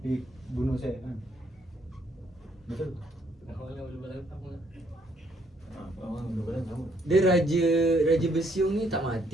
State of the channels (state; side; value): normal; both; correlation 0.69